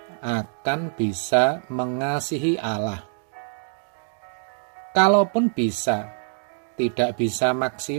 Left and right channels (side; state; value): left; silent; 62 dB below the other